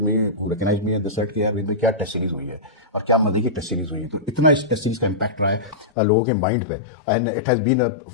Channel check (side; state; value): right; drops out; at 5.9 s